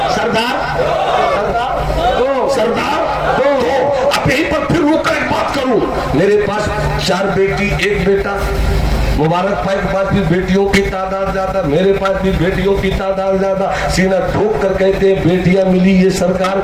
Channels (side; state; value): both; identical; correlation 1.00